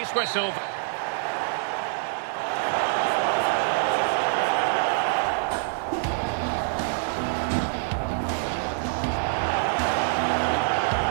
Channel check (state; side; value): silent; left; 61 dB below the other